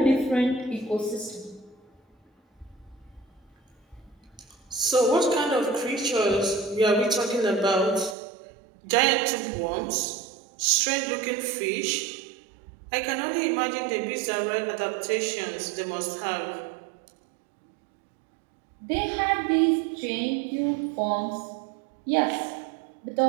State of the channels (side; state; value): left; drops out; at 8.2 s